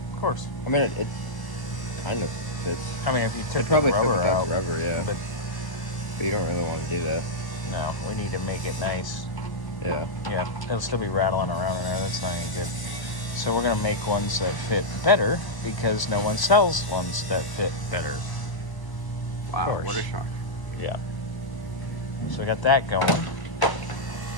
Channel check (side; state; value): right; late; 1.0 ms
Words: Of course. I mean, it kind of fits. I mean, if you took It the probably rubber fits out. without the rubber, yeah. But But you don't really want to do that. no, we need to make it nice. Yeah. Yeah, it'll still be rattling around in there. That's not any good. So we're going to make ones that fit better because no one sells ones that fit better. Wow, course. what a shock. Yeah. So we got that going.